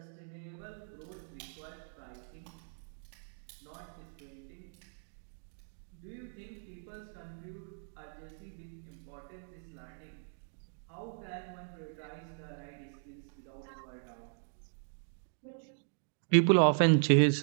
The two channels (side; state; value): left; silent; digital silence